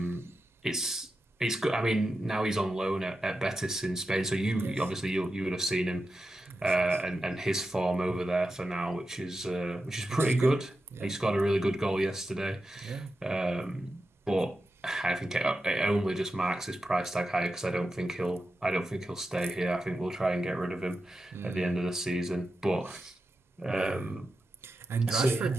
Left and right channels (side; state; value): both; normal; correlation 0.90